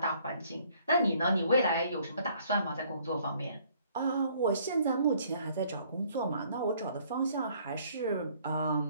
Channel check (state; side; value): inverted; both; correlation -0.61